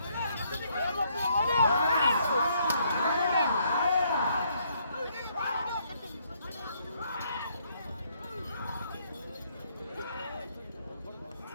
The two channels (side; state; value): both; inverted; correlation -0.70